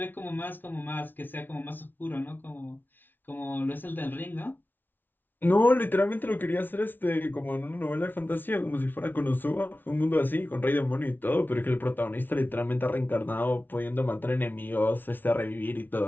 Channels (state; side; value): late; right; 0.091 ms